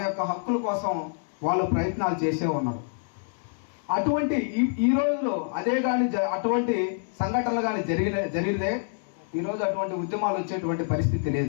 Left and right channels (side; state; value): right; silent; 60 dB below the other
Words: యొక్క హక్కుల కోసం వాళ్ళు ప్రయత్నాలు చేసే ఉన్నారు. అటువంటి ఈ రోజులో అదే కానీ అటువంటి సంఘటనలు కానీ జరిగితే ఈరోజు అటువంటి ఉద్యమాలు వచ్చేటువంటి పరిస్థితి